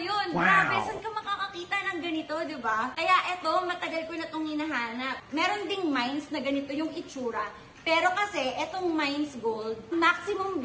yun. Wow! Grabe, saan ka makakakita ng ganito, di ba? Kaya eto, matagal ko na itong hinahanap. Meron ding mines na ganito yung itsura. Pero kasi, etong Mines Gold, maximum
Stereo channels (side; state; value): both; identical; correlation 1.00